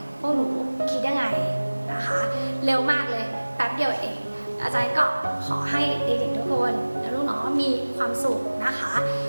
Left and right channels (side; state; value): both; inverted; correlation -1.00